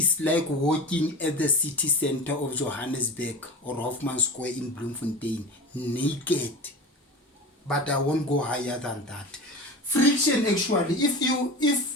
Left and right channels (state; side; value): normal; both; correlation 0.31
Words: walking at the city center of Johannesburg or Hoffman Square in Bloemfontein naked. But I won't go higher than that. Friction, actually,